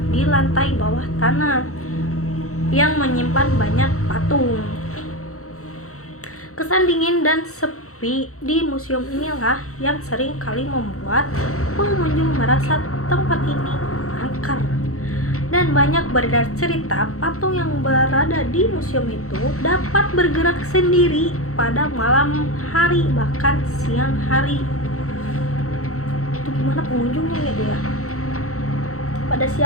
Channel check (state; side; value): late; right; 0.64 ms